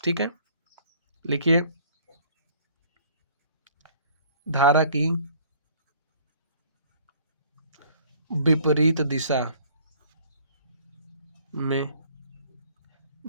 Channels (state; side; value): inverted; both; correlation -0.56